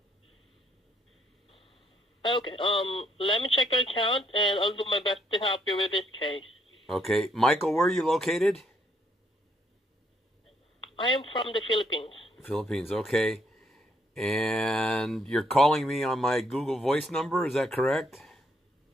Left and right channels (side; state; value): both; normal; correlation 0.71